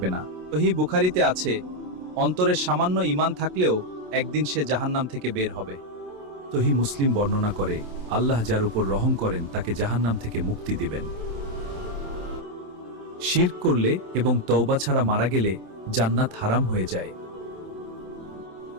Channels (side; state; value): left; late; 27 ms